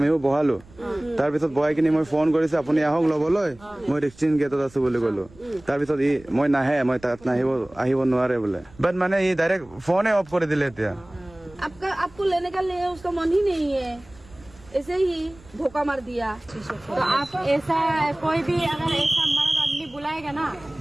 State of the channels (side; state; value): right; noise; rumble, 25 dB below the sound